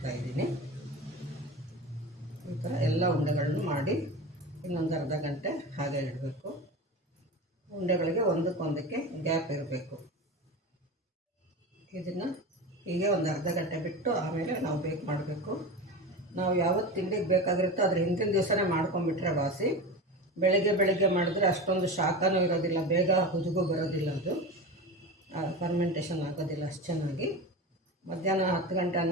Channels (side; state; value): both; normal; correlation 0.27